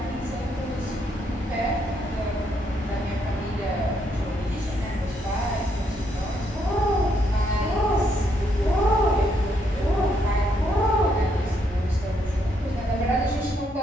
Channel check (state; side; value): normal; both; correlation 0.74